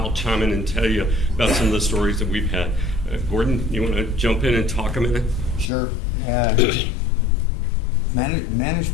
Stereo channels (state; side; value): drops out; right; at 5.7 s